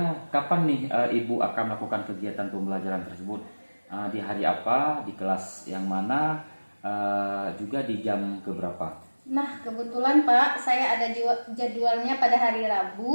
kapan nih Ibu akan melakukan kegiatan pembelajaran tersebut? Di hari apa? Di kelas yang mana? Juga di jam keberapa? Nah, kebetulan Pak, saya ada jadwalnya pada hari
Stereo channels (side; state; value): both; inverted; correlation -1.00